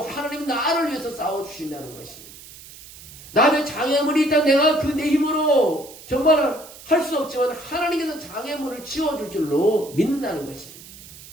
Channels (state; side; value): noise; right; hiss, 18 dB below the sound